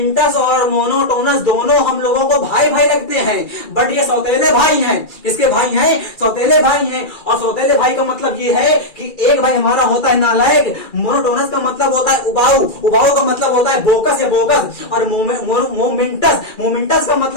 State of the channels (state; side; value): late; right; 2.3 ms